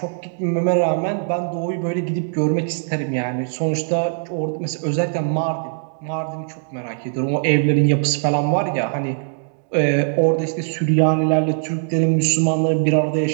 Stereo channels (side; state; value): left; silent; digital silence